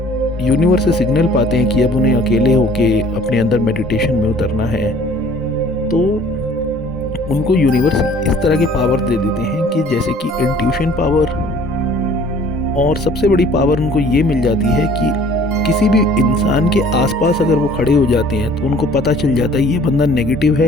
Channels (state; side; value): normal; both; correlation 0.53